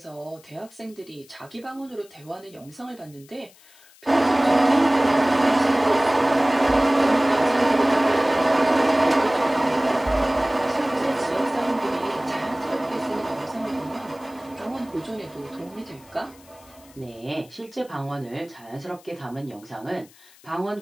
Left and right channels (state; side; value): noise; left; hiss, 26 dB below the sound